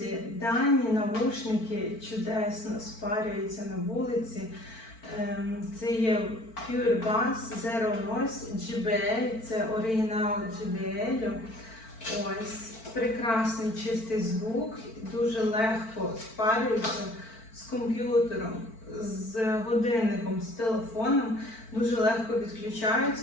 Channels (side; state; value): right; late; 4.5 ms